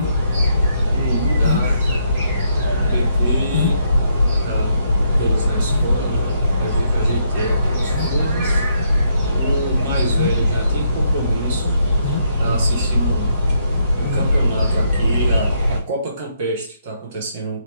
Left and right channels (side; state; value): both; inverted; correlation -0.75